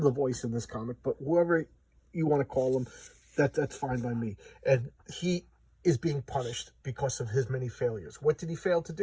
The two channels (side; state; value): both; identical; correlation 1.00